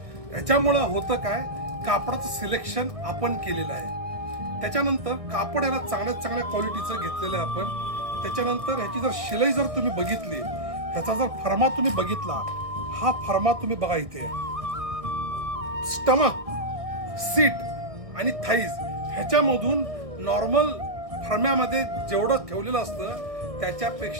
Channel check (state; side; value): late; left; 1.7 ms